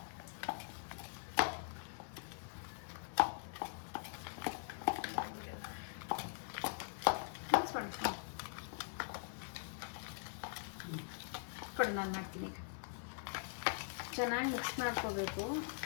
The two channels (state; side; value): silent; right; digital silence